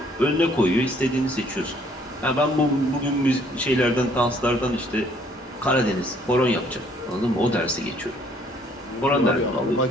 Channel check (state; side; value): normal; both; correlation 0.62